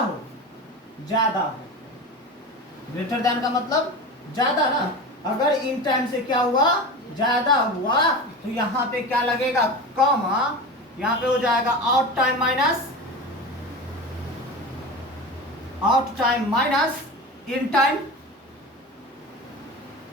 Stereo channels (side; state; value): both; normal; correlation 0.29